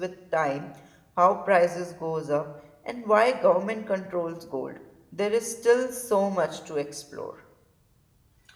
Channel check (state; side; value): identical; both; correlation 1.00